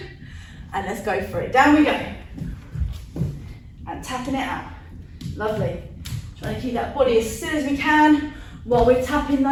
and let's go for it. Down we go. And tapping it out. Lovely. Trying to keep that body as still as we can while we're tapping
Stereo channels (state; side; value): identical; both; correlation 1.00